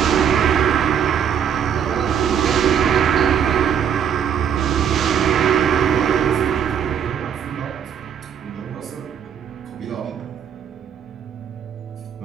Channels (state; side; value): quieter; left; 8.4 dB